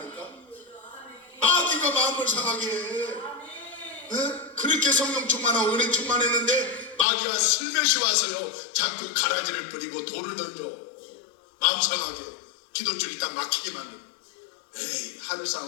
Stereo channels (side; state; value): right; drops out; at 7.1 s